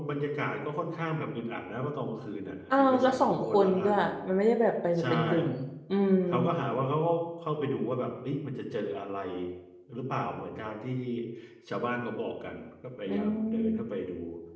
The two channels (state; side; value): identical; both; correlation 1.00